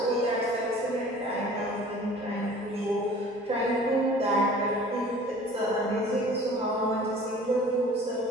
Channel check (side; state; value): both; normal; correlation 0.47